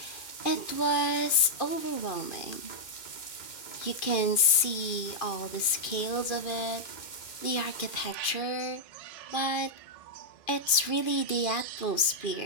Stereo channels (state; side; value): late; right; 2.4 ms